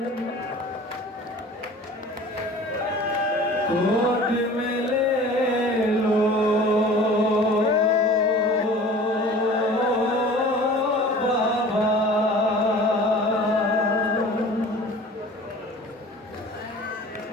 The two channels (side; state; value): both; normal; correlation 0.43